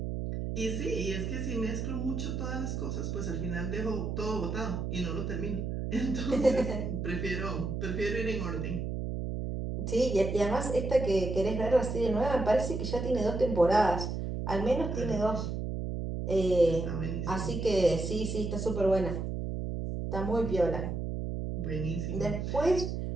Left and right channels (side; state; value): right; noise; hum, 3 dB below the sound